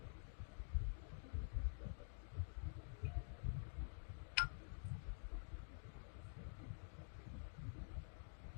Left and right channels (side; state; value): right; silent; digital silence